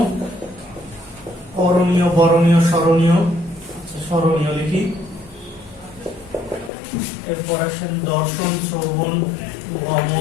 করণীয়, বরণীয়, স্মরণীয়। আচ্ছা, স্মরণীয় লিখি। এরপর আসেন দর্শন, শ্রবণ,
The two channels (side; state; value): right; drops out; at 6.7 s